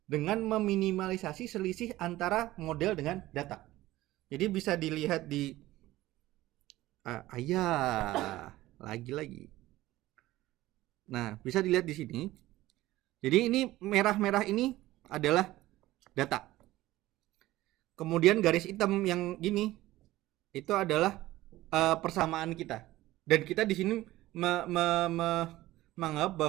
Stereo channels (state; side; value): quieter; left; 16.7 dB